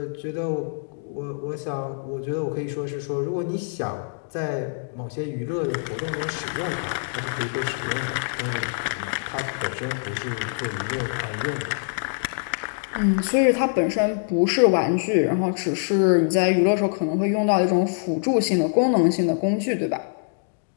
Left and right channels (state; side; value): silent; right; digital silence